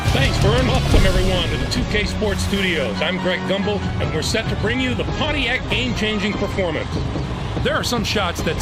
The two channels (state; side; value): identical; both; correlation 1.00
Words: Thanks, Vern. Welcome, everyone, to the 2K Sports Studios. I'm Greg Gumbel, and we're set to bring you the Pontiac game-changing performance. There are some shots that